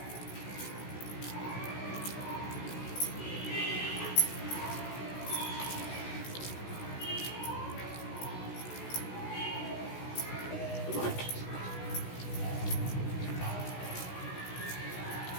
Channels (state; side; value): late; right; 16 ms